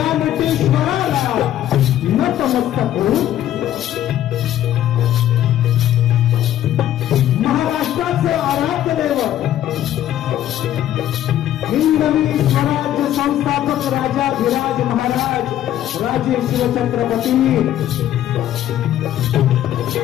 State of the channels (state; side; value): quieter; right; 12.1 dB